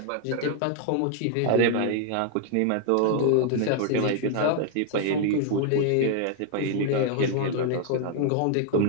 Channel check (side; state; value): both; different; correlation 0.00